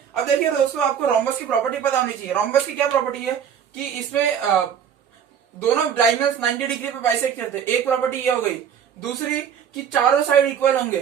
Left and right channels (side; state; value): left; quieter; 8.3 dB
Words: अब देखिए दोस्तों, आपको रोम्बस की प्रॉपर्टी पता होनी चाहिए। रोम्बस की क्या प्रॉपर्टी है कि इसमें दोनों डायगोनल्स 90 डिग्री पे बाइसेक्ट करते हैं, एक प्रॉपर्टी ये हो गई। दूसरी कि चारों साइड इक्वल